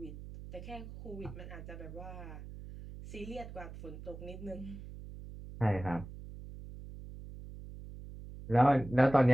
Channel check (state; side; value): noise; right; hum, 12 dB below the sound